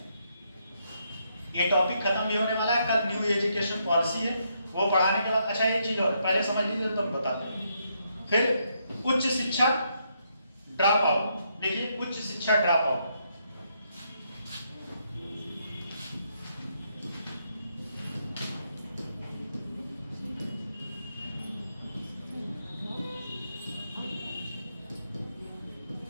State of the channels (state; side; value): inverted; both; correlation -0.77